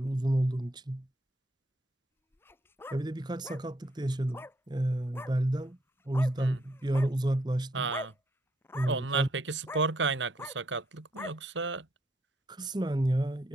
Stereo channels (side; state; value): both; normal; correlation 0.73